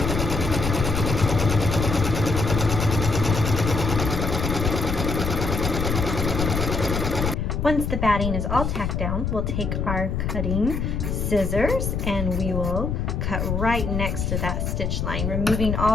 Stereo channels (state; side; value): noise; left; rumble, 1 dB below the sound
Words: Once the batting is all tacked down, we'll take our cutting scissors and we will cut right next to that stitch line, removing